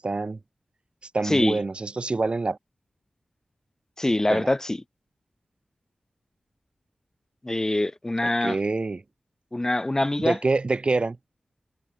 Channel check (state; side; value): normal; both; correlation 0.95